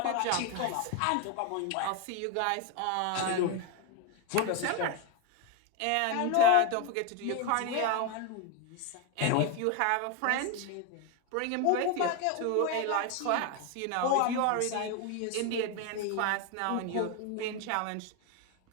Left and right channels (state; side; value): different; both; correlation 0.02